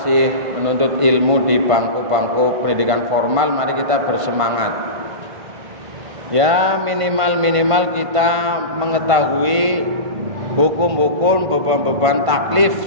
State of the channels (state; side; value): late; left; 1.5 ms